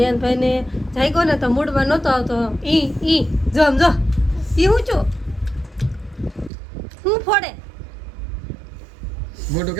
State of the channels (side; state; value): left; drops out; at 6.5 s